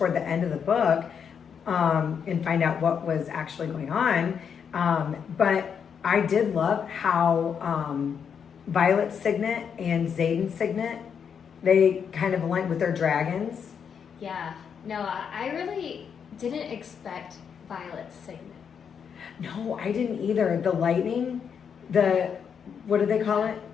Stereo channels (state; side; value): quieter; right; 7.2 dB